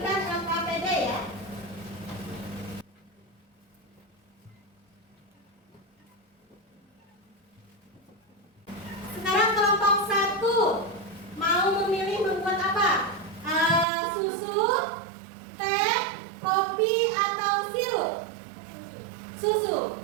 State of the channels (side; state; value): left; drops out; at 13.9 s